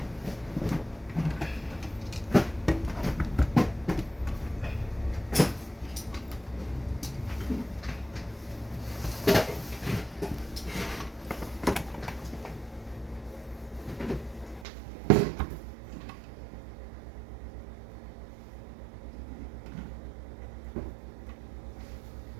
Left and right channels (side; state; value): left; drops out; at 14.7 s